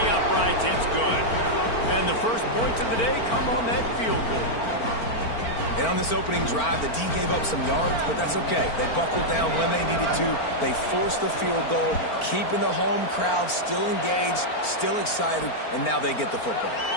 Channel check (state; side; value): late; right; 4.4 ms